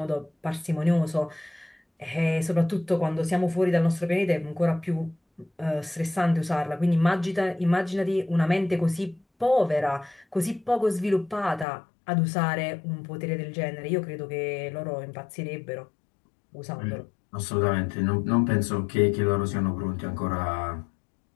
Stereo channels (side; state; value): right; drops out; at 11.7 s